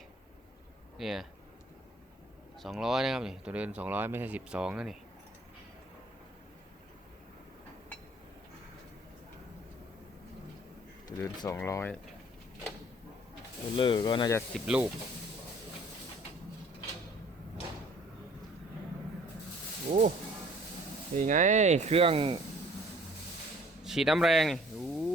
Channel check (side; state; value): both; normal; correlation 0.55